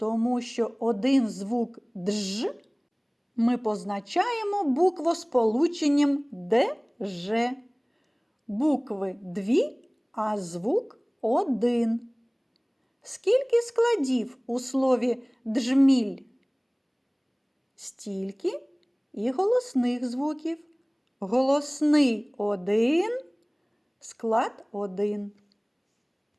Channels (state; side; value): identical; both; correlation 1.00